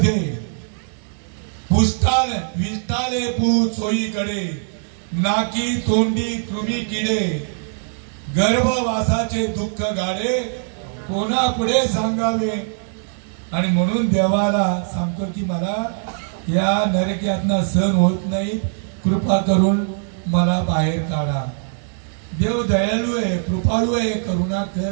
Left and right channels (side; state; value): left; silent; digital silence